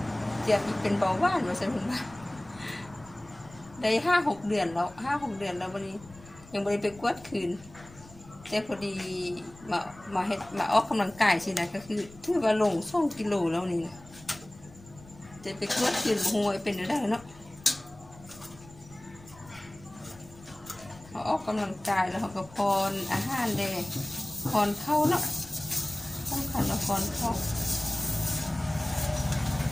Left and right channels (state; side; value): noise; left; rumble, 21 dB below the sound